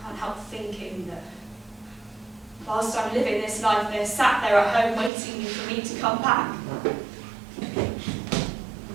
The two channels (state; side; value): drops out; left; at 5.1 s